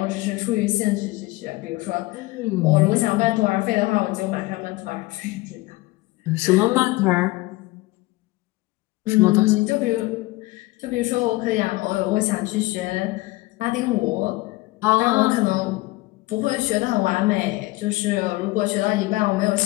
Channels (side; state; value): right; quieter; 20.8 dB